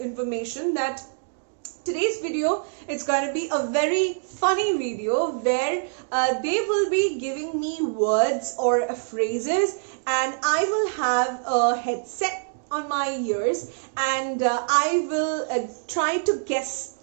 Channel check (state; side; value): silent; left; digital silence